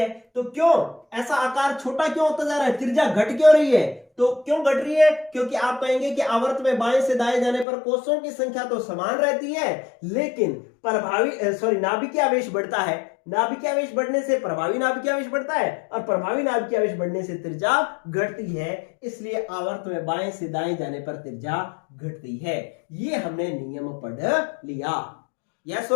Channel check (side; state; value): right; drops out; at 7.7 s